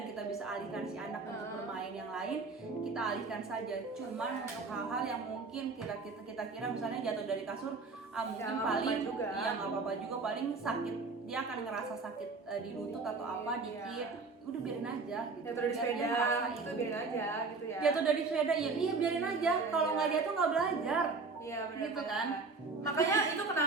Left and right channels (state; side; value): quieter; left; 4.2 dB